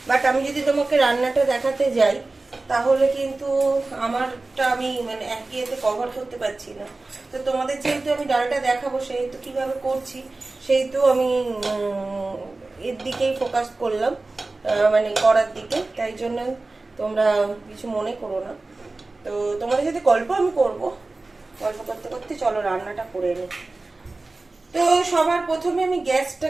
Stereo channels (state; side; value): quieter; left; 3.3 dB